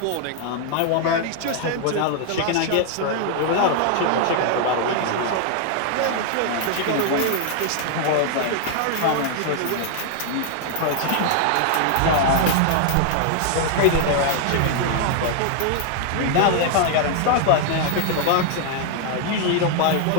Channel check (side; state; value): both; different; correlation 0.00